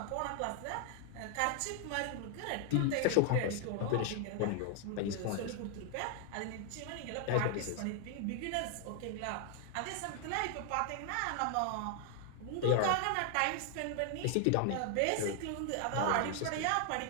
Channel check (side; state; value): both; different; correlation 0.00